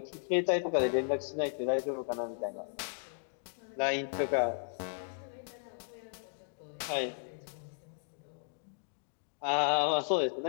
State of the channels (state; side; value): silent; right; digital silence